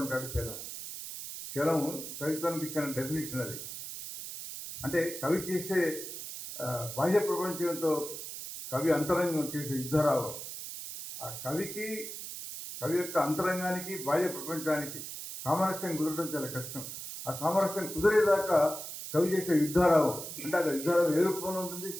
చలం. చలం కవిత్వానికి ఇచ్చిన డెఫినేషన్ అది. అంటే కవి చేసే బాహ్య ప్రపంచంతో కవి అంతరంగం చేసే యుద్ధరావం. ఆ కవి యొక్క అంతరంగానికి బాహ్య ప్రపంచానికి సామరస్యం కుదరడం చాలా కష్టం. ఆ సామరస్యం కుదిరేదాకా కవి చేసే యుద్ధరావం అంటే అది యుద్ధరావం ఏ రూపంలో ఉంటుంది?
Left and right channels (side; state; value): right; noise; hiss, 9 dB below the sound